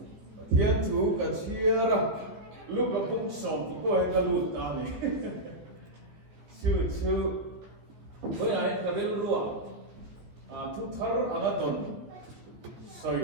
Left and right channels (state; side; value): late; left; 14 ms